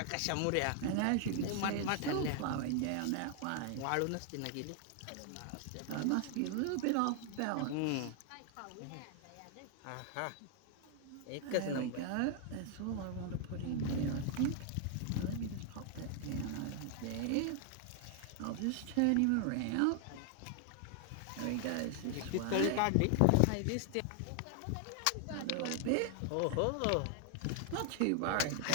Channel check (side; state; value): both; different; correlation 0.00